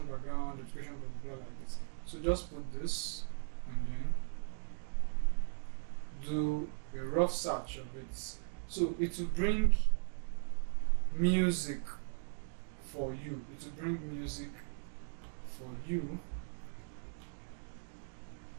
background, education blah blah blah like this. So just put this and then do a rough search of it. So it will bring music for you.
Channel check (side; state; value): left; silent; digital silence